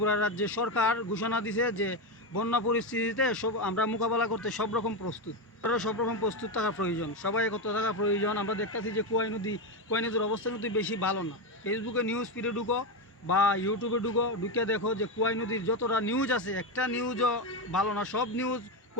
রাজ্যের সরকার ঘোষণা দিছে যে বন্যা পরিস্থিতিতে আমরা মোকাবেলা করতে সব রকম প্রস্তুত। সব রকম প্রস্তুত থাকা প্রয়োজন, সবাই কত থাকা প্রয়োজন। আমরা দেখতেছি যে কুয়াই নদীর অবস্থা কিন্তু বেশি ভালো না। ফেসবুকে নিউজ ফিডে ঢুকো বা ইউটিউবে ঢুকে দেখো যে কুয়াই নদীর যতটা নিউজ আছে একটা নিউজও ভালো না। সব নিউজ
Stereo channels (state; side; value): normal; both; correlation 0.11